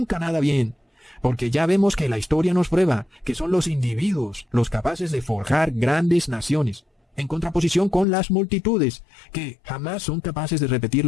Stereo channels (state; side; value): drops out; right; at 8.1 s